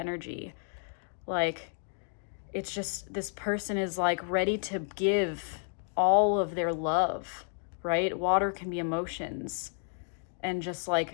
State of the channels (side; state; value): right; silent; digital silence